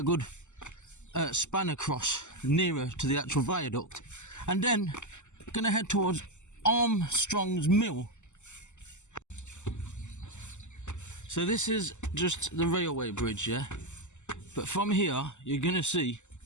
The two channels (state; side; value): late; right; 0.84 ms